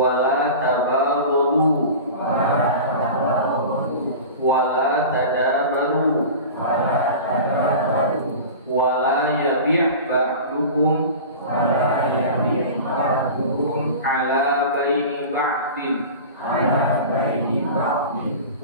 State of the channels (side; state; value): both; inverted; correlation -0.34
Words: la tabaghadu wala tadabaru wala yabi' ba'dukum ala baini ba'din